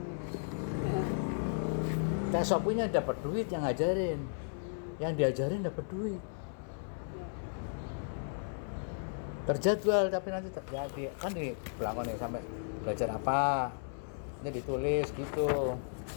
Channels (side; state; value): right; silent; 55 dB below the other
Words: Teh Sopinya dapat duit yang ngajarin. Yang diajarin dapat duit. Terjadwal tapi nanti kan di belakang nih sampai belajar apa. Ini ditulis gitu.